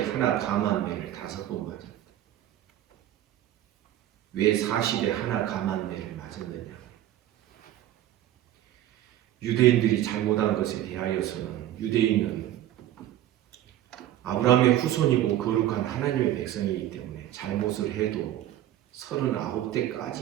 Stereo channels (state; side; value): quieter; left; 12.9 dB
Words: 하나 감한 매를 5번 맞았다. 왜 40에 하나 감한 매를 맞았느냐? 유대인들이 잘못한 것에 대하여서는 유대인은 아브라함의 후손이고 거룩한 하나님의 백성이기 때문에 잘못을 해도